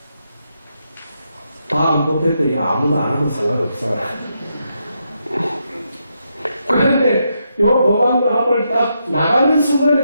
다음 법회 때 아무도 안 와도 상관없어. 그런데 요 법왕로 앞을 딱 나가는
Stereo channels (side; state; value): both; inverted; correlation -0.81